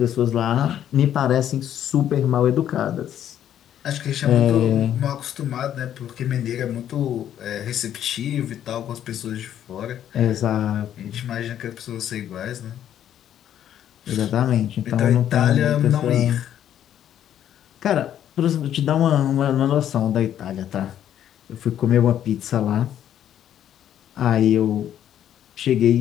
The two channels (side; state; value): right; quieter; 10.6 dB